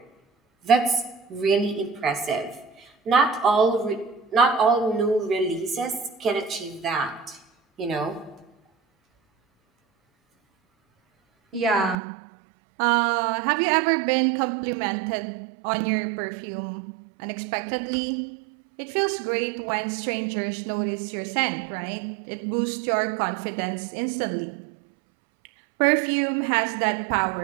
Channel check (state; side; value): drops out; left; at 12.0 s